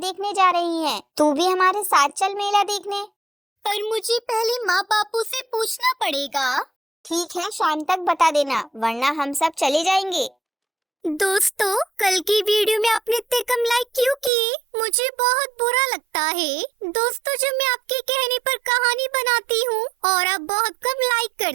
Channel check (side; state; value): left; drops out; at 14.3 s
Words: जा रही हैं। तू भी हमारे साथ चल मेला देखने। पर मुझे पहले माँ बापू से पूछना पड़ेगा। ठीक है, शाम तक बता देना, वरना हम सब चले जाएंगे। दोस्तों, कल की वीडियो में आपने इतने कम लाइक क्यों किए? मुझे बहुत बुरा लगता है। दोस्तों, जब मैं आपके कहने पर कहानी बनाती हूँ और आप बहुत कम लाइक